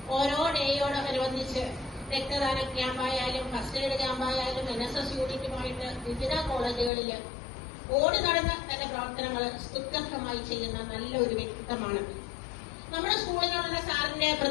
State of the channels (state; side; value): drops out; right; at 6.9 s